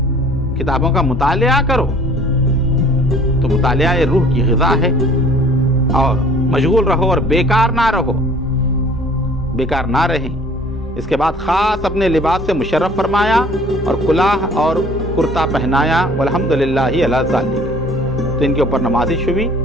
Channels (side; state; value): both; normal; correlation 0.52